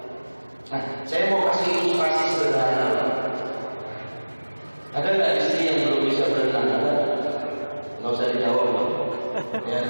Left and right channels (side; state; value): both; inverted; correlation -1.00